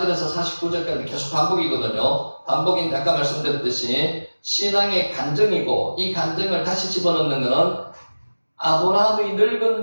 49절까지 계속 반복이거든요. 반복인데 아까 말씀드렸듯이 신앙의 간증이고 이 간증을 다시 집어넣는 것은 아브라함의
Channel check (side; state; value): both; inverted; correlation -1.00